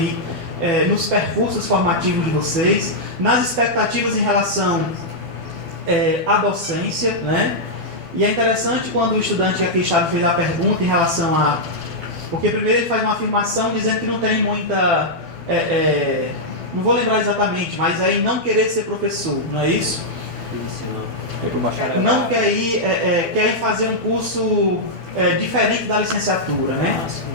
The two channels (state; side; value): late; left; 12 ms